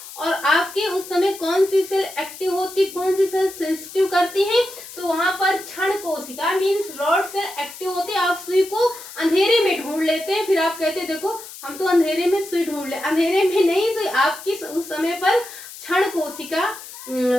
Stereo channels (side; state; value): left; noise; hiss, 14 dB below the sound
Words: और आपके उस समय कौन सी सेल एक्टिव होती, कौन सी सेल सेंसिटिव करती है, तो वहां पर क्षण कोशिका मीन्स रॉड सेल एक्टिव होती है। आप सुई को अंधेरे में ढूंढ लेते हैं, फिर आप कहते हैं देखो हम तो अंधेरे में सुई ढूंढ ले, अंधेरे में नहीं, सुई आपकी उस समय पर क्षण कोशिका